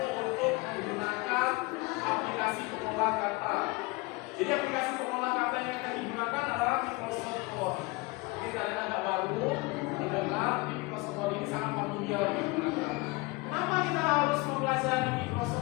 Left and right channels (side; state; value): right; quieter; 24.7 dB